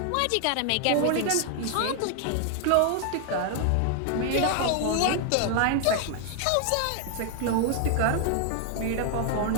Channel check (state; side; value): different; both; correlation 0.00